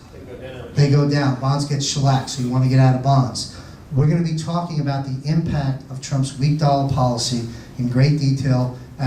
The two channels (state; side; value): identical; both; correlation 1.00